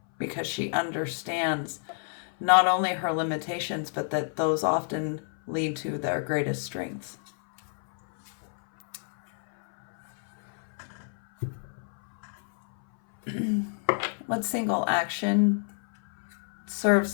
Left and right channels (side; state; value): right; silent; 59 dB below the other